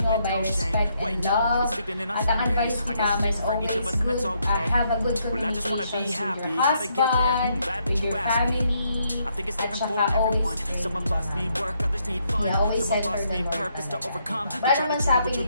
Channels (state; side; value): inverted; both; correlation -0.74